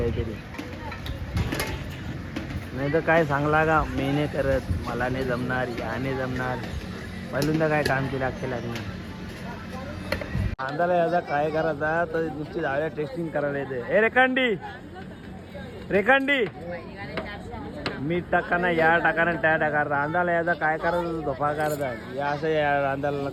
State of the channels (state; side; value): identical; both; correlation 1.00